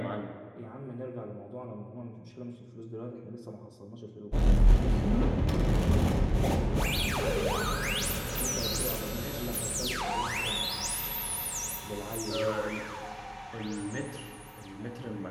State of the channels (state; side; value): identical; both; correlation 1.00